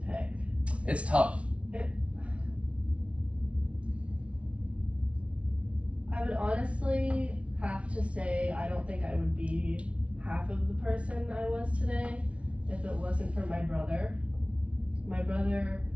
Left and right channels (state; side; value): late; left; 0.062 ms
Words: It's tough. I would honestly have to say I don't think I would be half of the person I was today if it wasn't for my brother. My brother